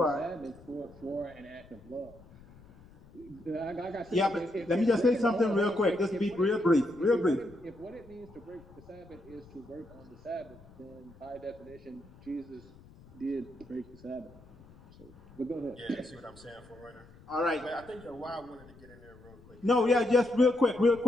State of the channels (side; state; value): left; noise; rumble, 23 dB below the sound